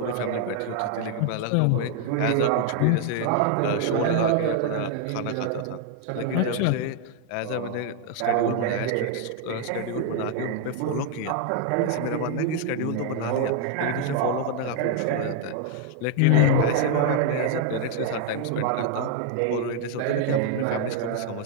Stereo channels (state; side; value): different; both; correlation 0.00